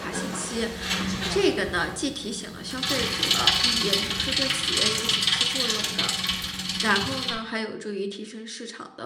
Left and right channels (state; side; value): identical; both; correlation 1.00